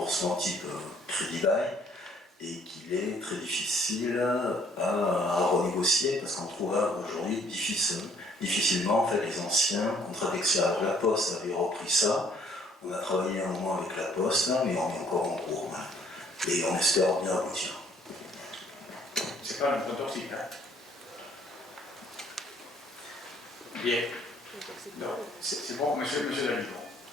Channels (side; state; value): both; normal; correlation 0.62